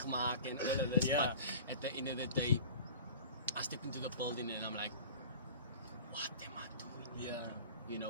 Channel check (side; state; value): both; inverted; correlation -0.40